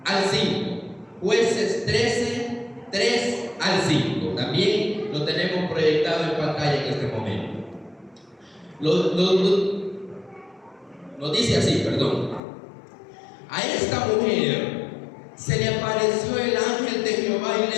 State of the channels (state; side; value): drops out; right; at 12.4 s